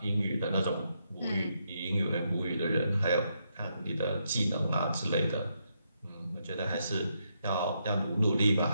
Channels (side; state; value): both; inverted; correlation -0.79